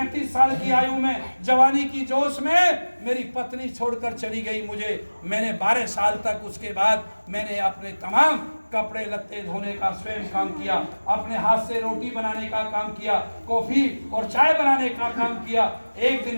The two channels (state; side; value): inverted; both; correlation -1.00